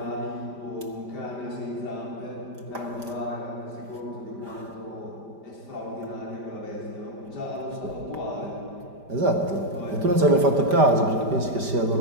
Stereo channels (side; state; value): left; late; 5.0 ms